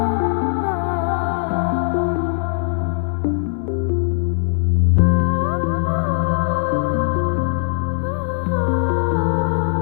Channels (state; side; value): silent; right; 62 dB below the other